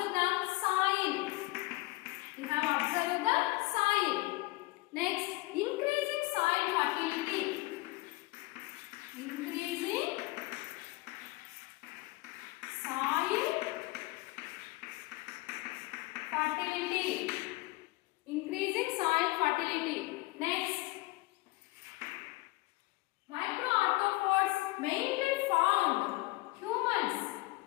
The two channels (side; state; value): right; quieter; 21.4 dB